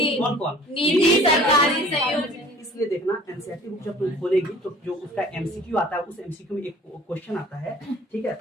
कौन कौन? निजी, सरकारी, संयुक्त। इसलिए देखना, एनसीईआरटी बुक जब तुम खोलेगी तो जो उसका एमसीक्यू आता है, उस एमसीक्यू में एक क्वेश्चन आता है, ठीक है।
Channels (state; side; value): normal; both; correlation 0.48